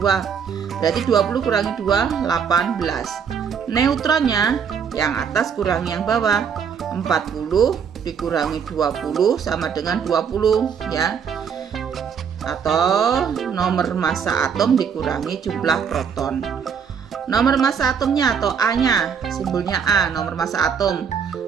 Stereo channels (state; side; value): quieter; left; 7.0 dB